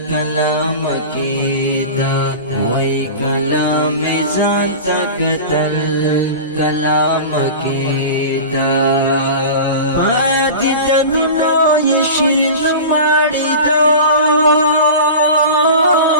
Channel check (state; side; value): inverted; both; correlation -0.32